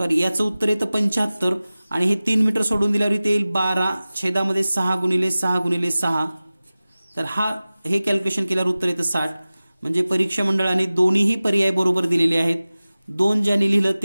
याचं उत्तर येतं 75 आणि हे 3 मीटर सोडून दिल्यावर इथे येईल 12 छेदामध्ये 6 गुणिले 6 गुणिले 6. तर हे कॅल्क्युलेशन केल्यावर उत्तर येतं 60. म्हणजे परीक्षा मंडळाने दोन्हीही पर्याय बरोबर दिलेले आहेत. 2 ज्यांनी लिहिलं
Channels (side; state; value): both; inverted; correlation -0.97